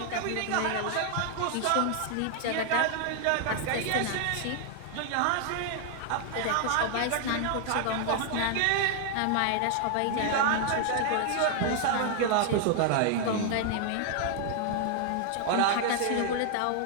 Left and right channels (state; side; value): different; both; correlation 0.00